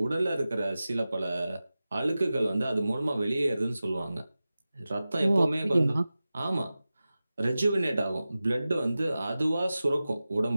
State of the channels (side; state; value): both; inverted; correlation -0.95